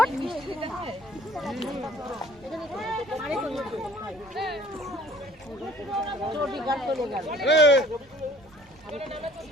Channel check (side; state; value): both; normal; correlation 0.54